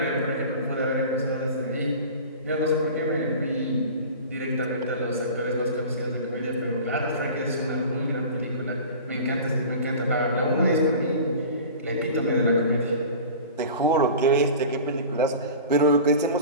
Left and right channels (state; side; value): inverted; both; correlation -0.37